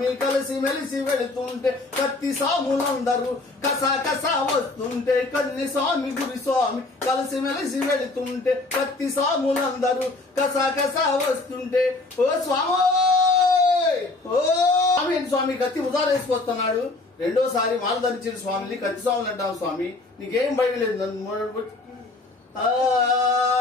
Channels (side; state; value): right; quieter; 3.2 dB